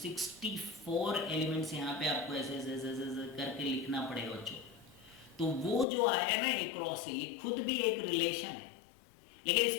एलिमेंट्स यहाँ पे आपको ऐसे ऐसे ऐसे ऐसे करके लिखना पड़ेगा बच्चों। तो वो जो आया ना ए क्रॉस ए, ये खुद भी एक रिलेशन है, लेकिन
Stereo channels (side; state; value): right; drops out; at 5.9 s